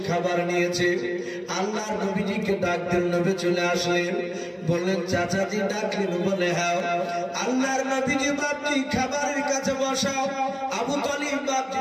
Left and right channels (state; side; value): identical; both; correlation 1.00